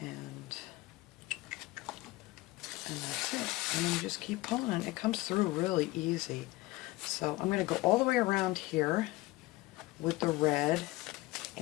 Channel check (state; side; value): quieter; right; 20.0 dB